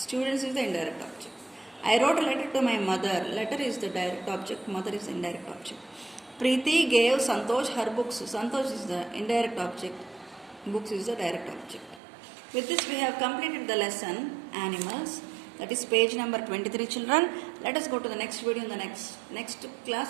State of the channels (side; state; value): left; drops out; at 12.0 s